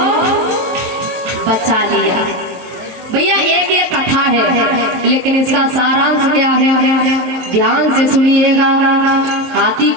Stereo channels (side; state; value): left; late; 23 ms